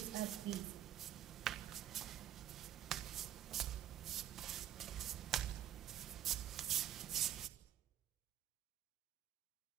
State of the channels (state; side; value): quieter; left; 11.4 dB